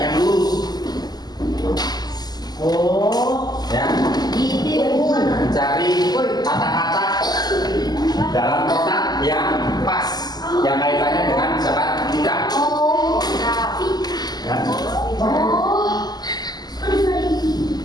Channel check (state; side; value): late; right; 0.20 ms